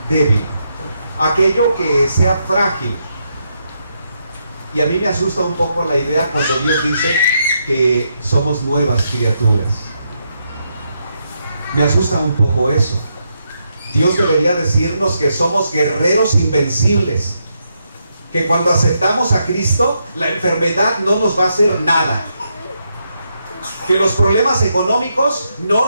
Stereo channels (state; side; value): inverted; both; correlation -0.81